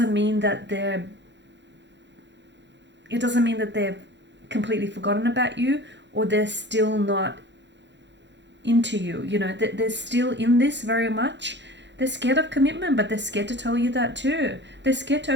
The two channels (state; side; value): late; left; 0.52 ms